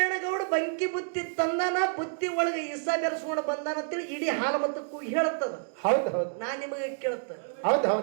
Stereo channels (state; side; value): silent; left; digital silence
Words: ಬಂಕಿ ಬುತ್ತಿ ತಂದಾನ, ಬುತ್ತಿ ಒಳಗೆ ಇಸ ಬೆರೆಸ್ಕೊಂಡು ಬಂದಾನ ಅಂತೇಳಿ ಇಡೀ ಹಾಲಮತಕ್ಕೂ ಹೇಳುತ್ತದ. ಹೌದು ಹೌದು ನಾನ್ ನಿಮಗೆ ಕೇಳುತ್ತ, ಹೌದು